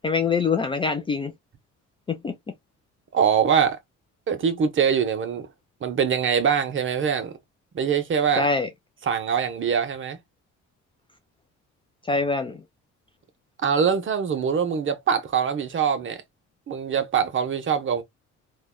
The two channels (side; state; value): left; quieter; 4.4 dB